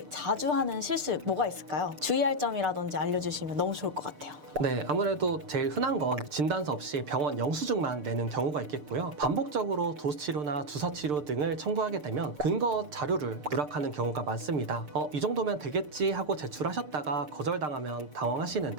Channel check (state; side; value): late; left; 6.7 ms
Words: 자주 하는 실수 뭐가 있을까요? 주의할 점이라든지 알려주시면 너무 좋을 것 같아요. 네, 아무래도 제일 흔한 건 진단서 없이 병원 영수증만 내는 경우가 있겠고요. 반복적으로 도수치료나 주사치료 등을 청구하게 되면 근거 자료를 누락하는 경우가 많습니다. 이 정도면 되겠지 하고 제출하셨다가 거절당하면